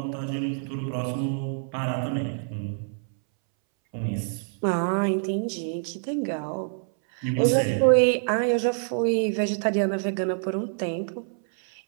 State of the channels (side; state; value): left; silent; 61 dB below the other